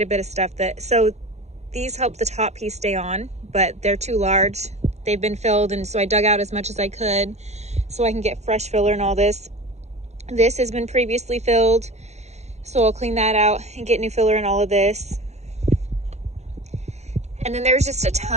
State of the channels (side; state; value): left; late; 0.32 ms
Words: a bit of stuff so these help the top piece stay on, but they're too large. They've been filled, and so I dug out as much as I could so I can get fresh filler and all this. This has been previously filled, so I'll clean that out and get new filler in all of this. And then there's just a